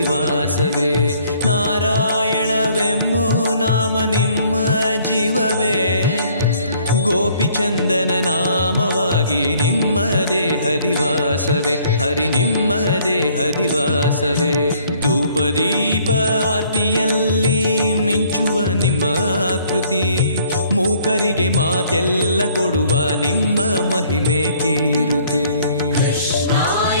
ನಾರಾಯಣವೆಂಬೋ ನಾಮ ನಿಮ್ಮ ಜೀವವೇ ಗೋಪಿಚಂದನ ನಾಮವಾಗಿ ನಿಮ್ಮ ದೇಹದಿವಾಸವೇ ಹರಿ ನಿಮ್ಮ ದೇಹದಿವಾಸವೇ ಧೂಪದೀಪ ಆರ್ತಿಯಲ್ಲಿ ಮಿಂಚುವ ನಿಮ್ಮ ಆಕೃತಿ ಮೂಕರಿಗೆ ಮಾತೆಲ್ಲ ಕೊಡುವ ನಿಮ್ಮ ಮಹಿಮೆ ಕೀರುತಿ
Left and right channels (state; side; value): inverted; both; correlation -0.60